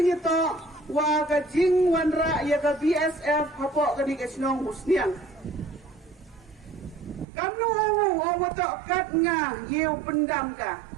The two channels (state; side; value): drops out; left; at 7.2 s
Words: itu, wagajing wanra yaga BSF hapok kani kesnong musniang. Kamnu watok kat nga yew pendam ka,